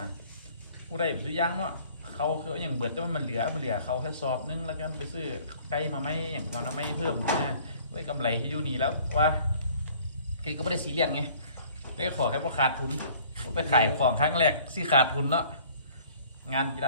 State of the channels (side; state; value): both; inverted; correlation -0.54